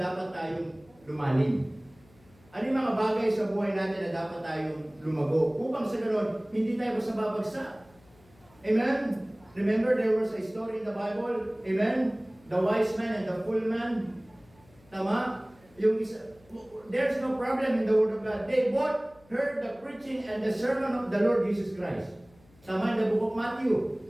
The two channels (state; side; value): noise; left; hum, 29 dB below the sound